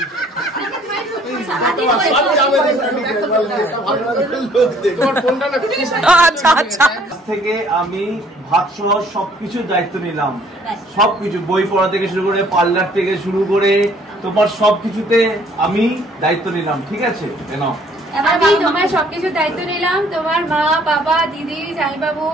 আচ্ছা আচ্ছা। থেকে আমি ভাত সহ সবকিছু দায়িত্ব নিলাম, সবকিছু বই পড়া থেকে শুরু করে পার্লার থেকে শুরু করে তোমার সবকিছুতে আমি দায়িত্ব নিলাম, ঠিক আছে? আমি তোমার সবকিছু দায়িত্ব নিলাম, তোমার মা বাবা দিদি জামাইবাবু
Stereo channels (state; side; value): normal; both; correlation 0.59